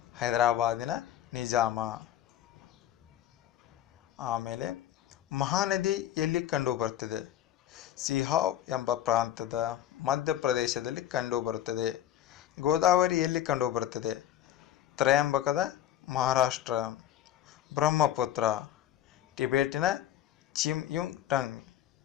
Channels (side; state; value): right; quieter; 11.7 dB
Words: ಹೈದರಾಬಾದಿನ ನಿಜಾಮ. ಆಮೇಲೆ ಮಹಾನದಿ ಎಲ್ಲಿ ಕಂಡುಬರುತ್ತದೆ? ಸಿಹಾವ್ ಎಂಬ ಪ್ರಾಂತದ ಮಧ್ಯಪ್ರದೇಶದಲ್ಲಿ ಕಂಡುಬರುತ್ತದೆ. ಗೋದಾವರಿ ಎಲ್ಲಿ ಕಂಡುಬರುತ್ತದೆ? ತ್ರಯಂಬಕದ ಮಹಾರಾಷ್ಟ್ರ. ಬ್ರಹ್ಮಪುತ್ರ ಟಿಬೆಟಿನ ಚಿಮ್ಯುಂಗ್ಟಂಗ್.